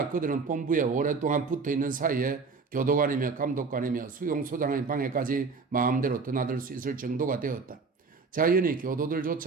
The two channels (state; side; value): quieter; left; 4.6 dB